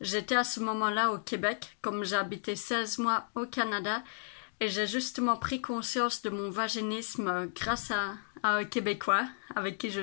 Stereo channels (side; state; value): right; silent; digital silence